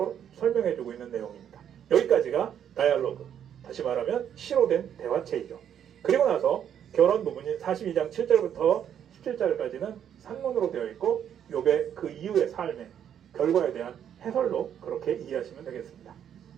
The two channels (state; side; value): quieter; left; 9.2 dB